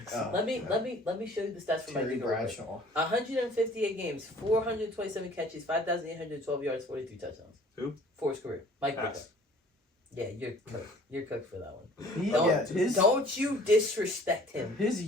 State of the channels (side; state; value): both; normal; correlation 0.52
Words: Oh, Let me yeah. let me show you the stats for Mike Terry Ditka. real quick. Bradshaw. 158 games, 427 catches, 5,812 yards, 43 touchdowns. Who? For his career. Mike Ditka. Ass. Yeah, you're cooked. You're cooked for that one. He, Don't, yeah, don't you disrespect him. his